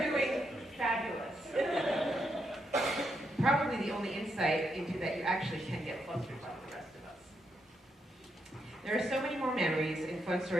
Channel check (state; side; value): normal; both; correlation 0.80